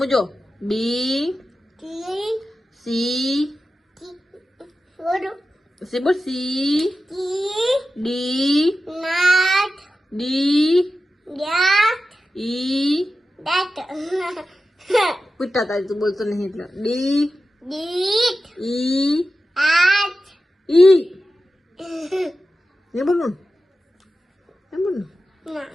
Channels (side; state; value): both; normal; correlation 0.93